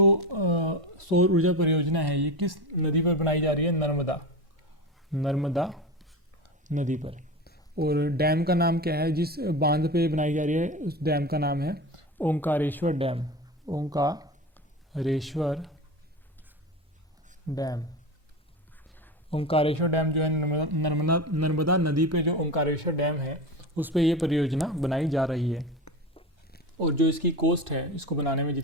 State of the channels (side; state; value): both; normal; correlation 0.25